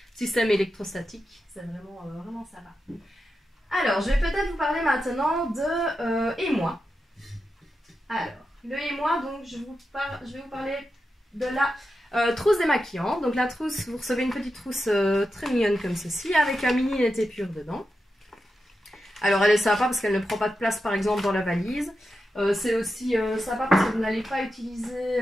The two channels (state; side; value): normal; both; correlation 0.89